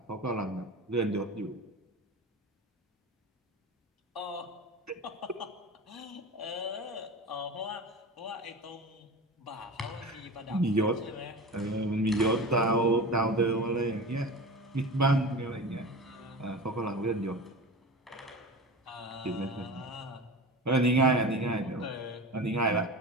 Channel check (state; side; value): normal; both; correlation 0.31